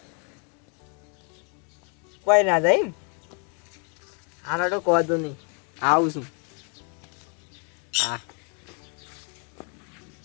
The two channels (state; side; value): quieter; right; 38.2 dB